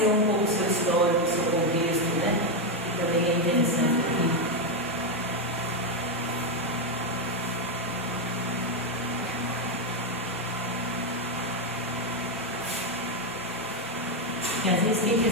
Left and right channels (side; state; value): right; noise; rumble, 29 dB below the sound